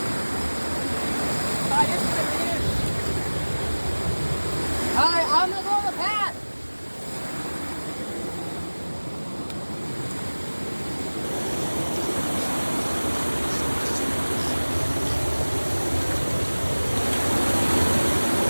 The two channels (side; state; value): both; inverted; correlation -1.00